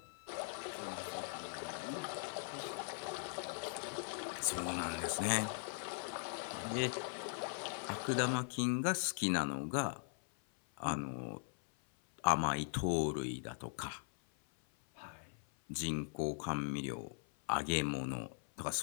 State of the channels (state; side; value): silent; right; 51 dB below the other